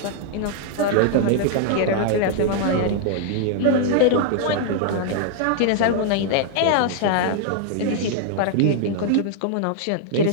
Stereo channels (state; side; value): different; both; correlation 0.00